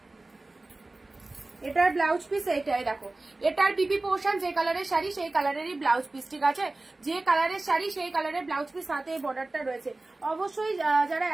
এটার ব্লাউজ পিস এইটাই দেখো, এটার বিপি পোর্শন যে কালারের শাড়ি সেই কালারেরই ব্লাউজ পিস, ঠিক আছে? যে কালারের শাড়ি সেই কালারের ব্লাউজ পিস, সাথে এই বর্ডারটা রয়েছে। অবশ্যই যারা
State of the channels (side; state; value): left; quieter; 3.0 dB